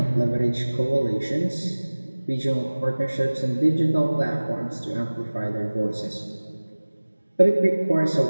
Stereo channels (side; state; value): both; inverted; correlation -1.00